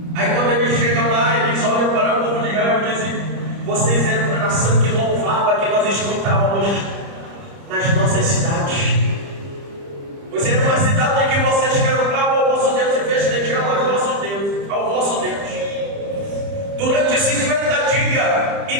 Aí quando eles chegam lá, eles olham para o povo de Israel e dizem: vocês eram a nação que louvava, que nós escutávamos nas nossas cidades. Vocês eram uma cidade em que vocês cantavam ao vosso Deus e festejavam ao vosso Deus. Durante 50 dias,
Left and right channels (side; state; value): left; late; 30 ms